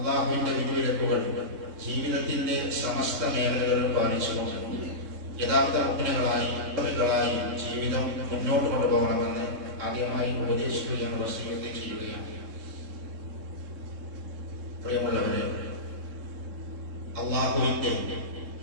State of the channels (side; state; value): left; late; 3.7 ms